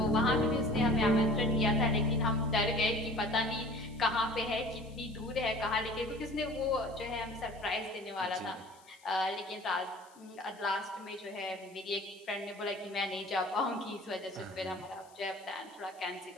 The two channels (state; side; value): noise; left; hiss, 27 dB below the sound